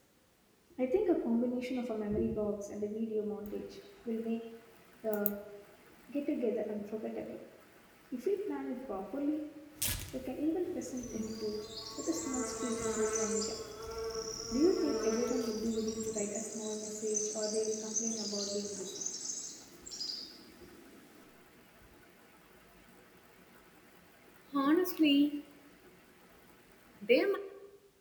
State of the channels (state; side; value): identical; both; correlation 1.00